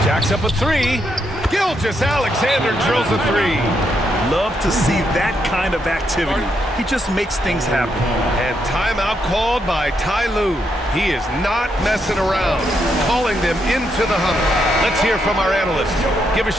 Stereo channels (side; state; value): both; normal; correlation 0.79